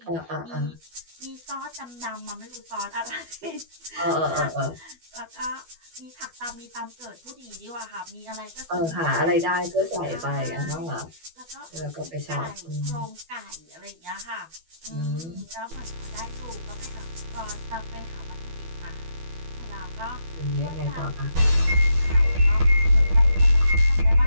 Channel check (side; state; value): left; late; 12 ms